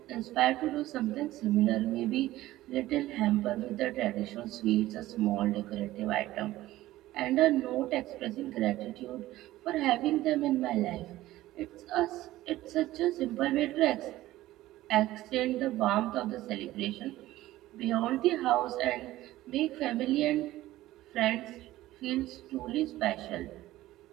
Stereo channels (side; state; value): left; quieter; 16.0 dB